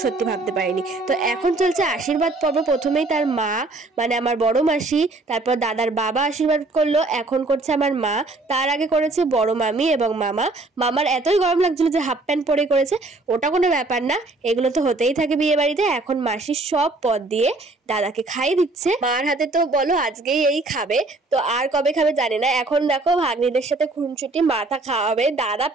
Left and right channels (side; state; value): left; quieter; 3.1 dB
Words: সত্যি ভাবতে পারিনি। তো এখন চলছে আশীর্বাদ পর্ব। প্রথমেই তার মা, মানে আমার বড় মাসি, তারপর দাদার বাবা আশীর্বাদ করলো, এখন করছে আমার মা, তার আগে করেছে বড় মামি এবং মামা। মামার এতই গরম লাগছিল যে হাফ প্যান্ট পরে করেছে, ওটা কোনো ব্যাপার না, এগুলো তো হতেই থাকে বিয়ে বাড়িতে। এখন মাসি সব পদ দিয়ে দাদাকে খাইয়ে দিচ্ছে। মার হাতে তো বলো আজকেই এই খাবে, তো আর কবে খাবে জানি না। এখন দেখো ভাগ্নিদের সাথে খুনছুটি, মাথা খাওয়াবে, দাদা